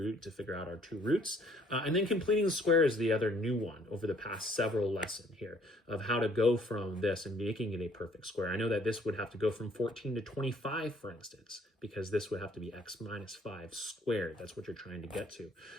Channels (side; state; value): both; normal; correlation 0.61